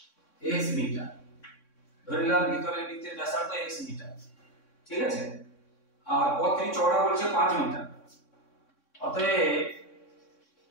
x মিটার ধরিলাম ভিতরের বৃত্তের ব্যাসার্ধ x মিটার ঠিক আছে আর পথটি চওড়া বলছে 5 মিটার অতএব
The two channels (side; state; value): right; late; 3.6 ms